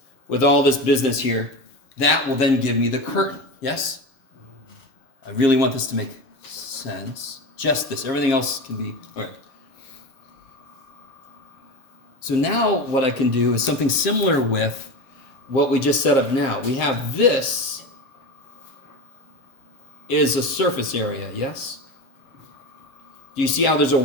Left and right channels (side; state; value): right; late; 7.5 ms